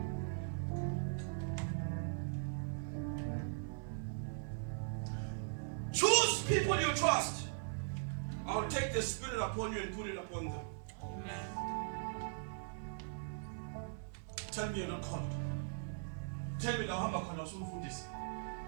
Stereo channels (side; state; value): left; silent; digital silence